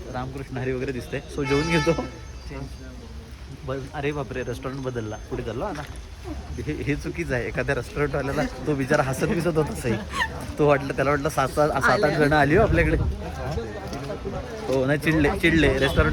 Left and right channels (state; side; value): identical; both; correlation 1.00